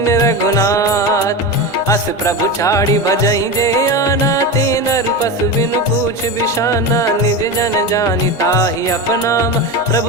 रघुनाथ। अस प्रभु छाड़ी भजई जे आना, ते नर पशु बिनु पूछ बिशाना। निज जन जानि ताहि अपनामा,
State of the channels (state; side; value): normal; both; correlation 0.21